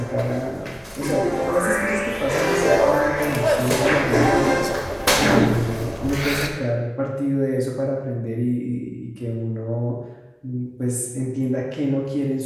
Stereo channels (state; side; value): identical; both; correlation 1.00